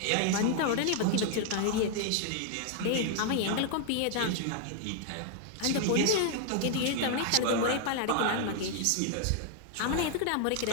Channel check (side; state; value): both; different; correlation 0.00